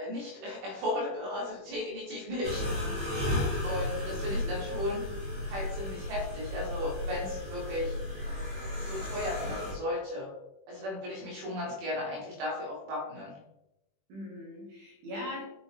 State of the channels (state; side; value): late; left; 21 ms